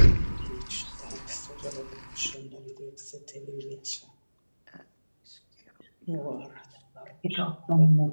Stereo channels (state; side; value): inverted; both; correlation -1.00